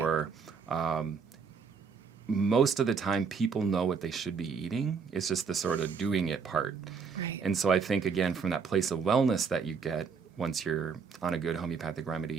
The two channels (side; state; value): left; quieter; 5.7 dB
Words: most of the time, people know what they should be eating. It's just the sort of doing it part. Right. And so I think, again, from that place of wellness that you get once you're on a good homeopathic